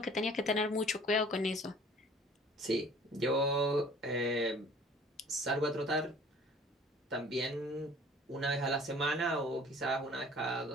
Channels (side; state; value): both; normal; correlation 0.50